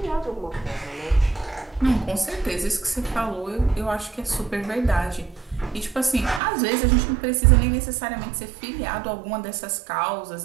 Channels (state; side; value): drops out; left; at 6.4 s